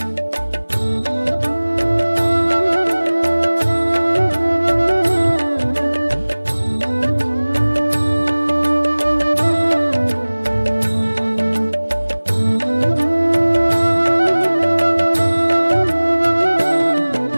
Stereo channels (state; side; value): inverted; both; correlation -1.00